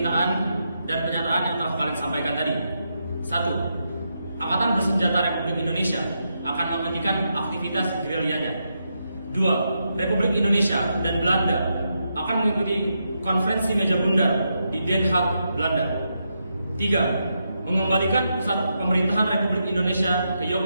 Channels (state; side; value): inverted; both; correlation -0.83